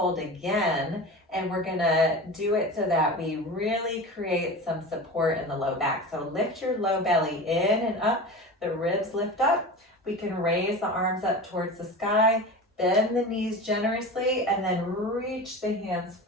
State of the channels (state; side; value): normal; both; correlation 0.31